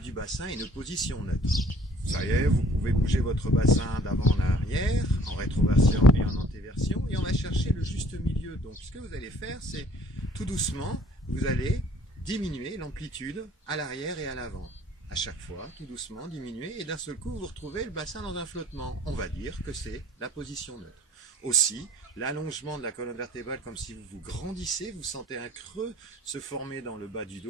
bassin et une position neutre. Ça y est, vous pouvez bouger votre bassin d'avant en arrière, en rétroversion et en antéversion, et on va chercher le juste milieu. Donc ce que vous allez faire, c'est tout doucement, vous allez diminuer l'amplitude à l'arrière et à l'avant. À chaque fois, tout doucement, diminuer, et d'un seul coup, vous retrouvez le bassin dans un flottement. On va dire que c'est la position neutre. Aussi, l'allongement de la colonne vertébrale, comme si vous grandissez, vous sentez un creux se former dans le bas du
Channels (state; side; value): normal; both; correlation 0.55